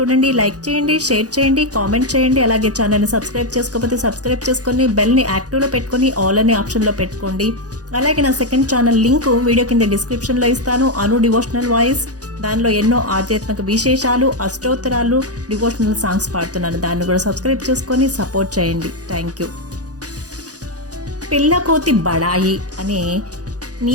లైక్ చేయండి, షేర్ చేయండి, కామెంట్ చేయండి. అలాగే ఛానల్ని సబ్స్క్రైబ్ చేసుకోకపోతే సబ్స్క్రైబ్ చేసుకొని బెల్ని యాక్టివ్లో పెట్టుకొని ఆల్ అనే ఆప్షన్లో పెట్టుకోండి. అలాగే నా సెకండ్ ఛానల్ లింక్ వీడియో కింద డిస్క్రిప్షన్లో ఇస్తాను. అను డివోషనల్ వాయిస్. దానిలో ఎన్నో ఆధ్యాత్మిక విశేషాలు, అష్టోత్తరాలు, డివోషనల్ సాంగ్స్ పాడుతున్నాను. దాన్ని కూడా సబ్స్క్రైబ్ చేసుకొని సపోర్ట్ చేయండి. Thank you. పిల్లకోతి బడాయి అనే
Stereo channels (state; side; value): late; left; 0.67 ms